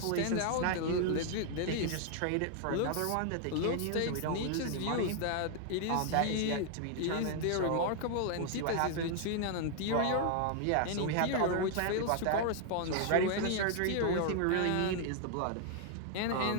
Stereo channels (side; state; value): both; different; correlation 0.00